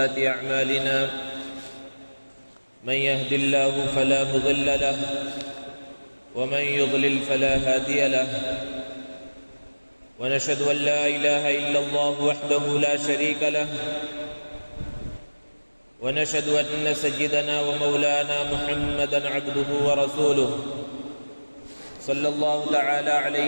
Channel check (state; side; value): inverted; both; correlation -1.00